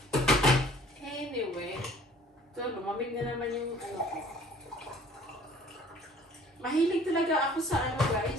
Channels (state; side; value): normal; both; correlation 0.53